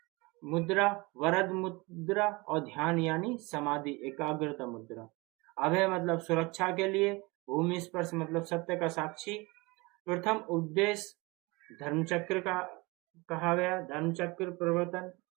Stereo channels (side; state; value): left; quieter; 25.0 dB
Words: मुद्रा, वरद मुद्रा और ध्यान यानी समाधि एकाग्रता मुद्रा। अभय मतलब सुरक्षा के लिए, भूमि स्पर्श मतलब सत्य का साक्षी। प्रथम उपदेश धर्मचक्र का कहा गया, धर्मचक्र प्रवर्तन।